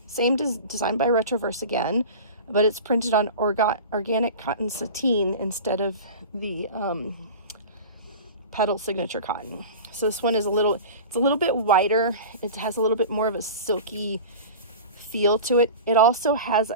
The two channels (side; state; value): both; inverted; correlation -0.34